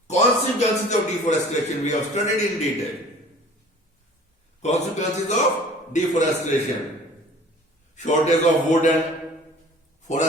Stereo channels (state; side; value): normal; both; correlation 0.48